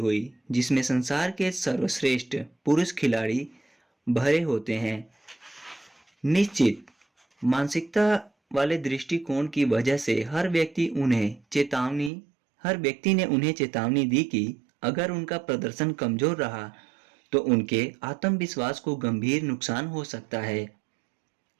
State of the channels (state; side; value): drops out; left; at 12.1 s